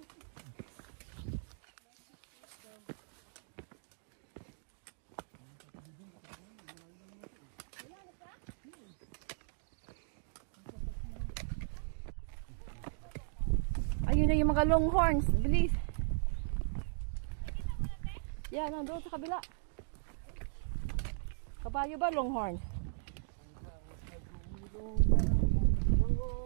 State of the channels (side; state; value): left; silent; digital silence